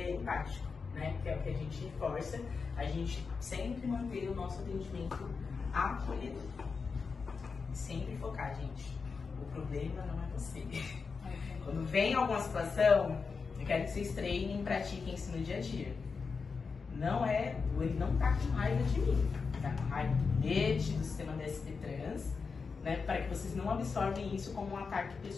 né? Que é o que a gente reforça, a gente sempre manter o nosso atendimento acolhedor. Sempre focar, gente. O problema não é você. Quando vem alguma situação, eu quero que vocês treinem e pratiquem isso no dia a dia. Ele não tá com raiva de mim, tá com raiva do bilhete, do sistema da SP Trans, né? Para que vocês não absorvem isso como um ataque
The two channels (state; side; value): quieter; right; 5.0 dB